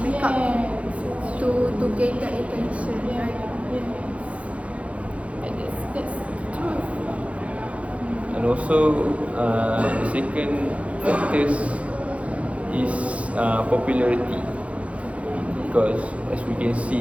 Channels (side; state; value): left; late; 0.064 ms